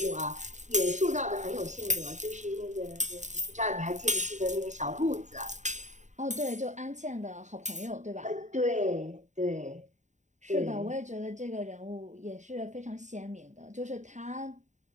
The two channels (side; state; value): left; late; 0.35 ms